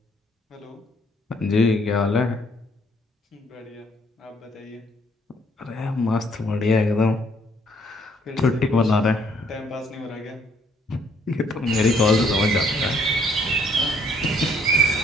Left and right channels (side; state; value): both; normal; correlation 0.65